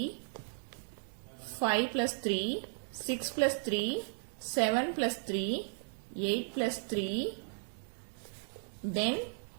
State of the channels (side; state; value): left; silent; digital silence